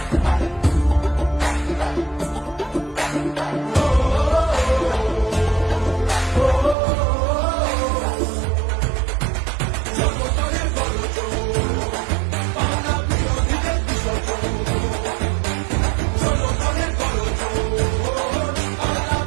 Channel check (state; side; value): drops out; left; at 6.8 s